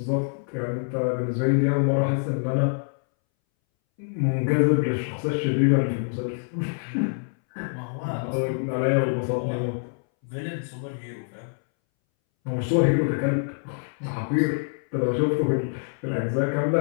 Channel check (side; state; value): right; silent; 61 dB below the other